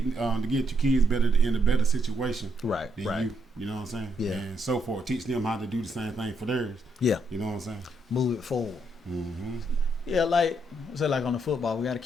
your kids better in a better situation. Right. Than right. You know what I'm saying? Yeah. And so forth. Teach them how to do the same thing for theirs. Yeah. You know what I'm saying? Move it forward. Yeah, like on the football, we got to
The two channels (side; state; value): both; normal; correlation 0.76